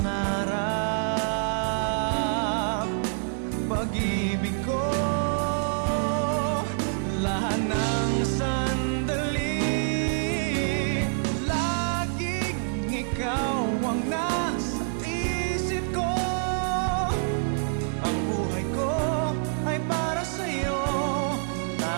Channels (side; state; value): left; silent; 60 dB below the other